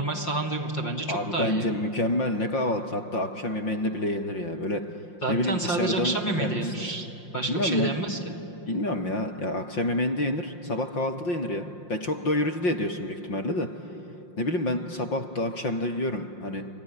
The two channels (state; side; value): late; right; 5.6 ms